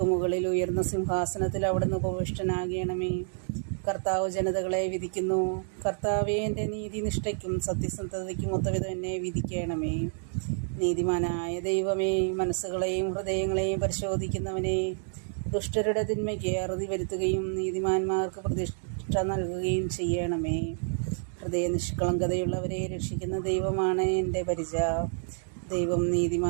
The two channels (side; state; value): left; silent; digital silence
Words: മുകളിൽ ഉയർന്ന സിംഹാസനത്തിൽ അവിടുന്ന് ഉപവിഷ്ടനാകണമേ. കർത്താവ് ജനതകളെ വിധിക്കുന്നു. കർത്താവേ, എൻ്റെ നീതിനിഷ്ഠയ്ക്കും സത്യസന്ധതയ്ക്കും ഒത്തവിധം എന്നെ വിധിക്കണമേ. നീതിമാനായ ദൈവമേ, മനസ്സുകളെയും ഹൃദയങ്ങളെയും പരിശോധിക്കുന്നവനെ, ദുഷ്ടരുടെ തിന്മയ്ക്ക് അറുതി വരുത്തുകയും നീതിമാന്മാർക്ക് പ്രതിഷ്ഠ നൽകുകയും ചെയ്യണമേ. ഹൃദയ നിഷ്കളങ്കതയുള്ളവരെ രക്ഷിക്കുന്ന ദൈവമാണ് എൻ്റെ പരിച. ദൈവം